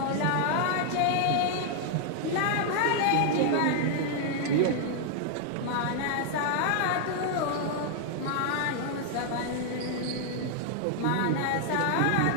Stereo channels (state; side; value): different; both; correlation 0.00